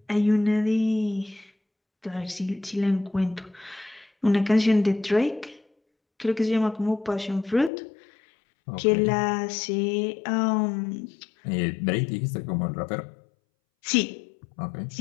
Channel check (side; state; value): right; drops out; at 7.7 s